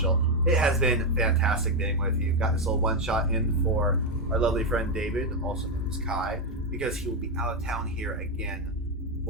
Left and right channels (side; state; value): both; normal; correlation 0.05